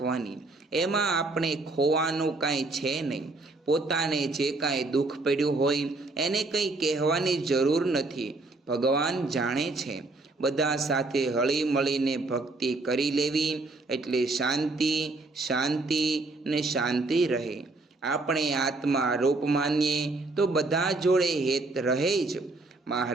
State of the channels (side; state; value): left; quieter; 3.2 dB